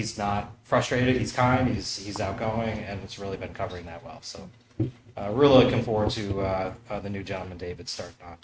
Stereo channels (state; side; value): identical; both; correlation 1.00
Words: not frustrated. He's kind. He's outgoing, and it's really been covering that well. So, really looking forward to the new gentleman, David, starting on